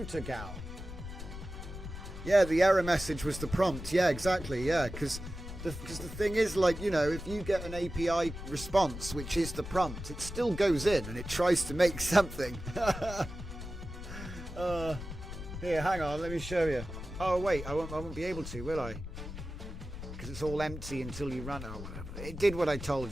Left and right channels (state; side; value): noise; left; rumble, 9 dB below the sound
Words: gal. Yeah, the error message was the prompt. Yeah, exactly. Yeah, because the thing is, like, you know, if you get an API response, which is the prompt, it still goes in and it tries to make something. Here, hang on, let me show you. Oh wait, I won't be able to, will I? Because it's all empty until you run. Oh, whatever. It did what I